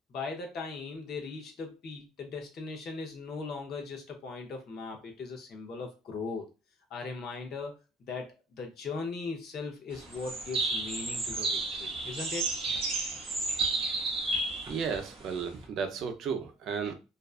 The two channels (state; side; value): normal; both; correlation 0.51